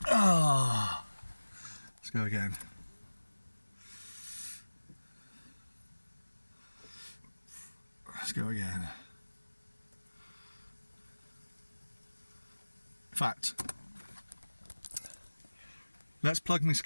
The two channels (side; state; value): both; inverted; correlation -1.00